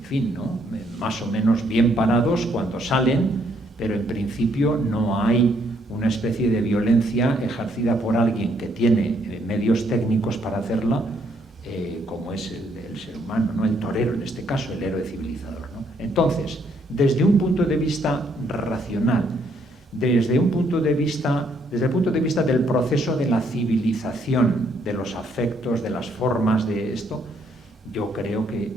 fin, ¿no?, más o menos bien parados cuando salen, pero en principio no hay una especie de violencia ejercida por alguien que tiene medios técnicos para hacerla, como es el ser humano, ¿no?, el torero en este caso, el héroe civilizador, ¿no? Entonces, desde un punto de vista racional, desde el punto de vista del proceso de la civilización, de los afectos, de las formas de esto, yo creo que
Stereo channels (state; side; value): normal; both; correlation 0.70